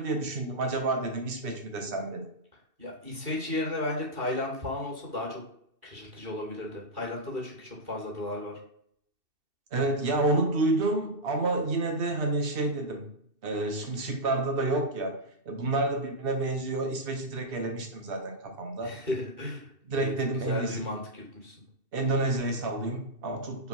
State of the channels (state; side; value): late; left; 2.7 ms